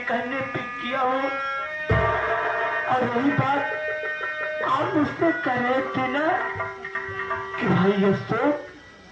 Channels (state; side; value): identical; both; correlation 1.00